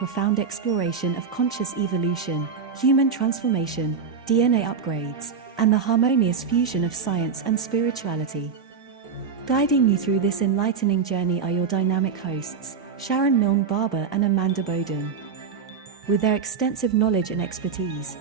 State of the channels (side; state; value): left; quieter; 6.0 dB